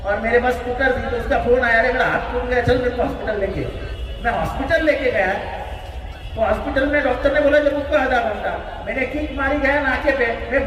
और मेरे पास स्कूटर थी, तो उसका फोन आया, मेरा हाथ टूट गया, चल मेरे को हॉस्पिटल लेके। मैं हॉस्पिटल लेके गया, तो हॉस्पिटल में डॉक्टर ने बोला जब उसको आधा घंटा, मैंने किक मारी गया नाके पे, मैं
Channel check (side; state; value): both; identical; correlation 1.00